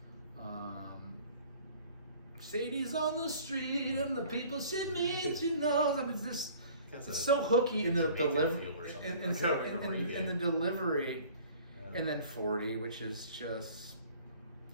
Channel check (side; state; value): both; inverted; correlation -0.50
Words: Sadie's on the street and the people should meet, she knows. I mean, it's so hooky in the delivery. In the delivery. Yeah. And then 40, which is just,